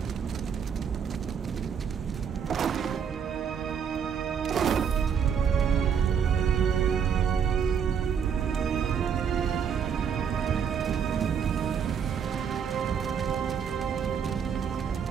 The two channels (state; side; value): quieter; left; 7.4 dB